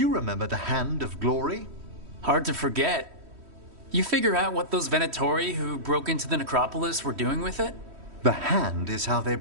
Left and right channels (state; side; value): late; left; 3.1 ms